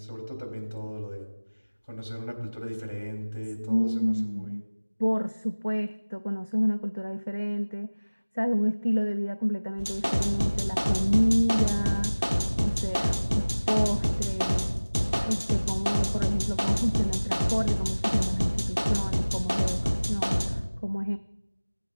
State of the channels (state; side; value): inverted; both; correlation -1.00